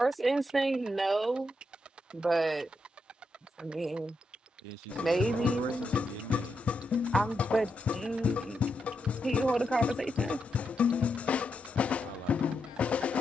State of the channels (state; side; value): normal; both; correlation 0.83